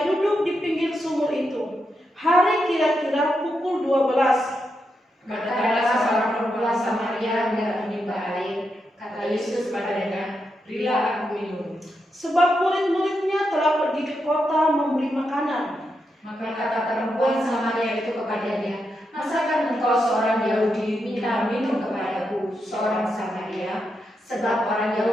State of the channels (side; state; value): both; normal; correlation 0.84